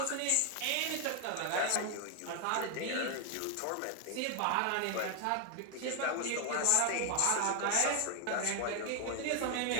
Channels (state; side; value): different; both; correlation 0.01